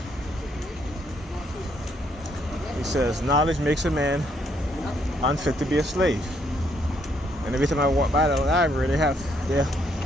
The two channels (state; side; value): normal; both; correlation 0.71